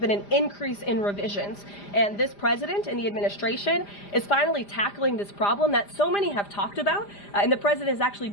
an increase in revisions. And this president and the administration is finally tackling this problem that so many have talked about, and the president is actually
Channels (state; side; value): late; right; 5.0 ms